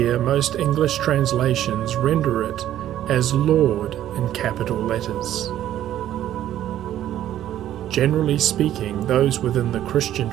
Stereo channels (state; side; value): quieter; left; 12.1 dB